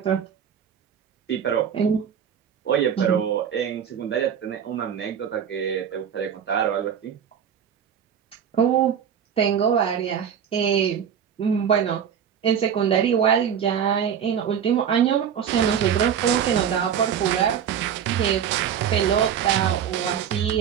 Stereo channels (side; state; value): left; quieter; 8.4 dB